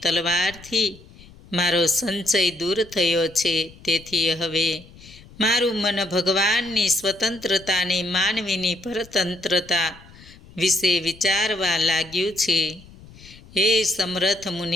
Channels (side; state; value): left; noise; rumble, 22 dB below the sound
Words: તલવારથી મારો સંશય દૂર થયો છે. તેથી હવે મારું મન ભગવાનની સ્વતંત્રતાની માનવીની પરતંત્રતા વિશે વિચારવા લાગ્યું છે. હે સમર્થ